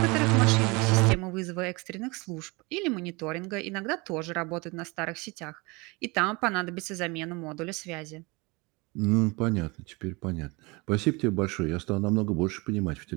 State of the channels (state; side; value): quieter; left; 26.1 dB